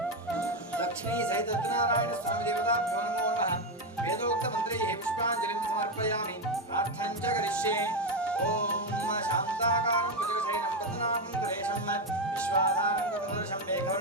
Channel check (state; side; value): normal; both; correlation 0.09